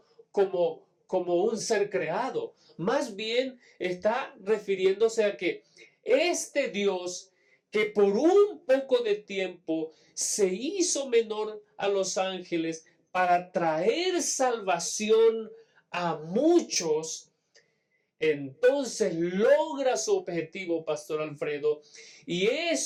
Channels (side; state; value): both; identical; correlation 1.00